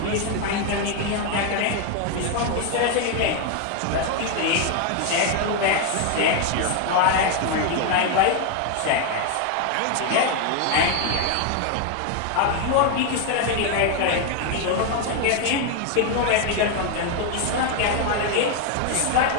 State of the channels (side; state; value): both; different; correlation 0.01